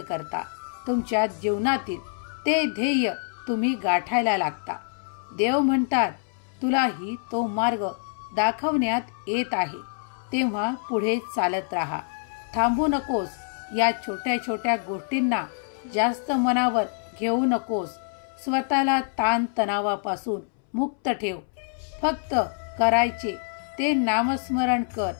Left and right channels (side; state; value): right; silent; 61 dB below the other